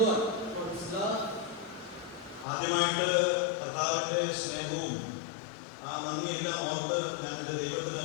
God for His love. ആദ്യമായിട്ട് കർത്താവിൻ്റെ സ്നേഹവും ആ നന്ദിയെല്ലാം ഓർത്ത് ഞാൻ എൻ്റെ ദൈവത്തിന്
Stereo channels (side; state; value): right; drops out; at 2.5 s